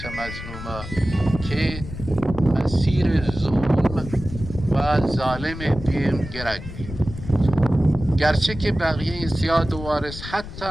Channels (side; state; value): left; noise; rumble, 11 dB below the sound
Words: مظلومه که مسیر ظلم و ظالم بیم گرک بید گرچه که بقیه سیاد و وارث